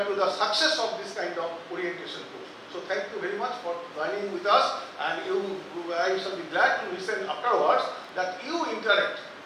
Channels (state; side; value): identical; both; correlation 1.00